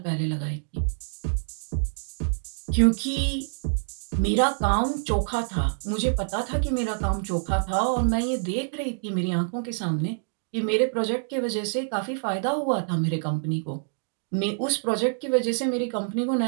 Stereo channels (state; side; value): silent; left; digital silence